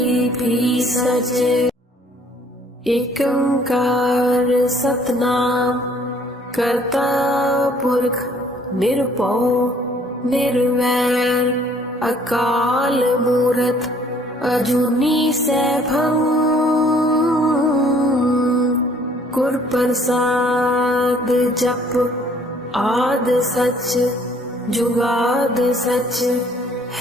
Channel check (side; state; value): both; normal; correlation 0.59